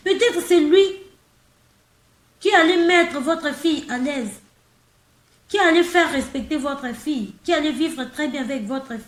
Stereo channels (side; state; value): both; identical; correlation 1.00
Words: Peut-être c'est lui qui allait mettre votre fille à l'aise, qui allait faire respecter votre fille, qui allait vivre très bien avec votre